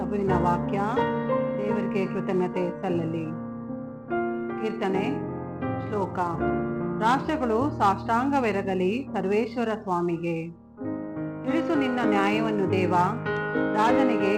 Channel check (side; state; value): both; identical; correlation 1.00